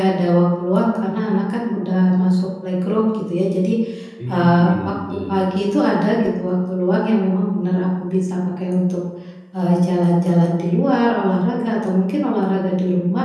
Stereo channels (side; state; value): both; identical; correlation 1.00